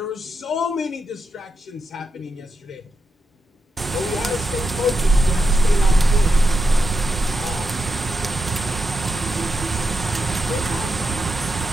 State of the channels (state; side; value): normal; both; correlation 0.86